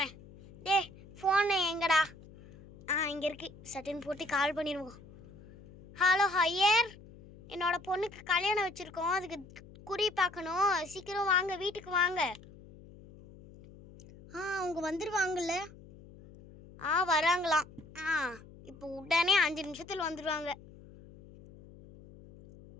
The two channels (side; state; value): left; noise; hum, 20 dB below the sound